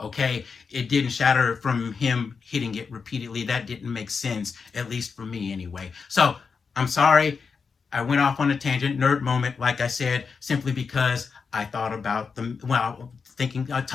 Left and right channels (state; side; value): quieter; right; 5.4 dB